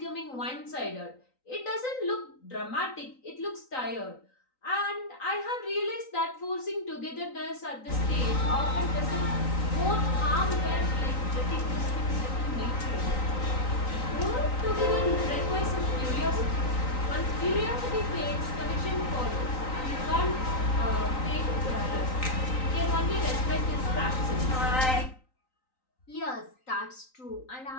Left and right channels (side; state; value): right; late; 3.9 ms